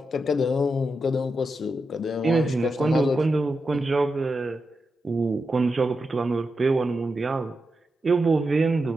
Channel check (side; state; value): both; normal; correlation 0.88